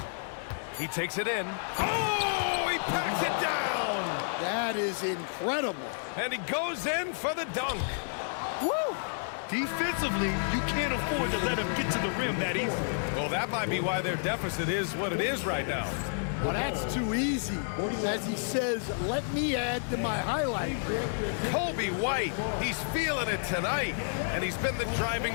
He takes it in. Oh, he packs it down! That is incredible. And he goes in for the dunk. Woo! Defensively, you can't afford to let him get to the rim that easily. Well, that might be why their deficit is what it is right now. Well, that's too easy. As he says, let me add to my highlight reel. Kobe White, he's feeling it tonight, and he's been the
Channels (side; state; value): right; silent; digital silence